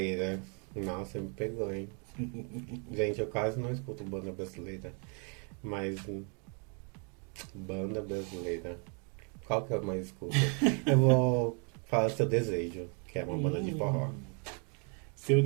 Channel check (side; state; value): left; quieter; 38.0 dB